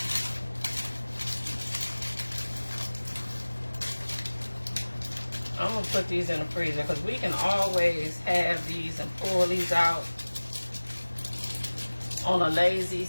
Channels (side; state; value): both; inverted; correlation -1.00